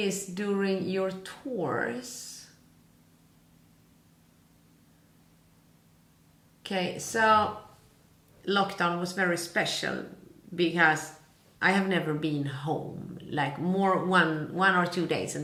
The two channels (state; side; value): identical; both; correlation 1.00